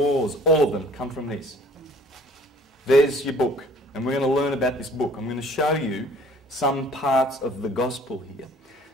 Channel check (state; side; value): normal; both; correlation 0.54